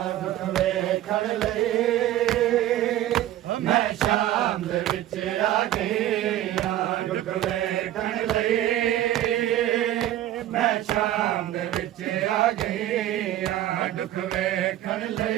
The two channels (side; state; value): left; quieter; 13.3 dB